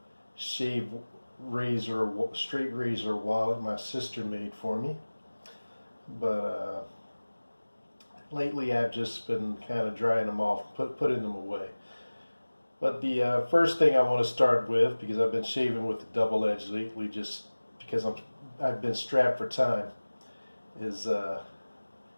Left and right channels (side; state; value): both; inverted; correlation -1.00